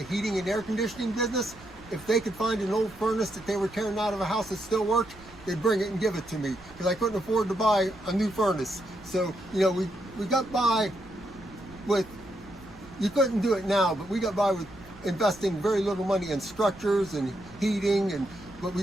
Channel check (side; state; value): right; noise; rumble, 22 dB below the sound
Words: heating and air conditioning business. If they could find an old furnace that they were tearing out of a house that still worked, they'd bring it and give it to me because I couldn't afford to buy a new furnace. So, we got by with, you couldn't do it now, but we got by with investing very little money in structures and heating, but